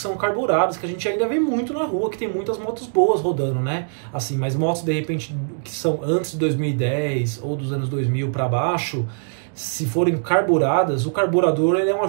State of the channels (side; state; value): left; silent; digital silence